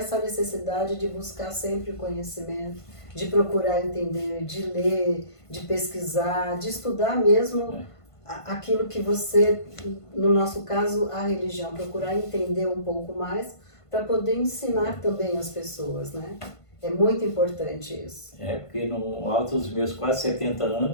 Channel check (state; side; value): late; right; 1.5 ms